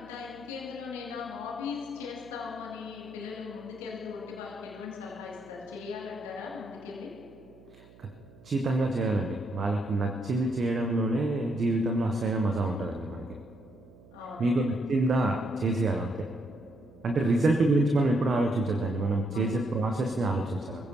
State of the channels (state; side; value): noise; right; hum, 23 dB below the sound